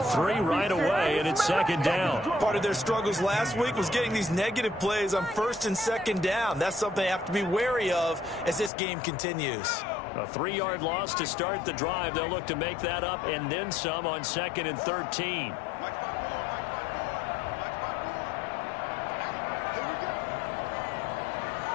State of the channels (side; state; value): right; drops out; at 8.7 s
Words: 3 right away, and it's second down. Part of their struggles last week was getting these negative plays on first and second down. That's something they have to be wary of as this game continues. A 3-yard loss to start the drive. They'll look to make that up and then some on 2nd and 13.